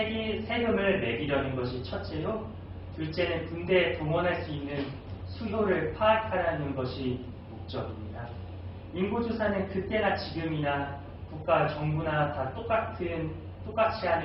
매기려는 것이 첫째요. 둘째는 군대에 동원할 수 있는 수요를 파악하라는 것이 목적입니다. 인구조사는 그때나 지금이나 국가, 정부나 다 똑같이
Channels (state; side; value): identical; both; correlation 1.00